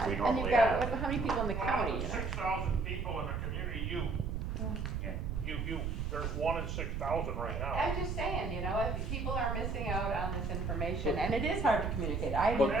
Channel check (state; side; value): noise; right; rumble, 2 dB below the sound